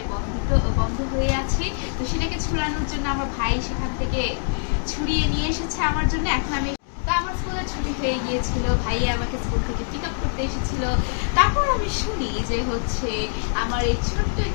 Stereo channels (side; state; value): right; silent; 63 dB below the other